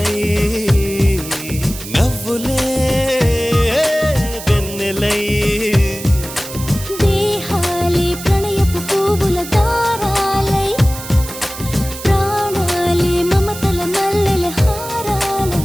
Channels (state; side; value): noise; right; hiss, 11 dB below the sound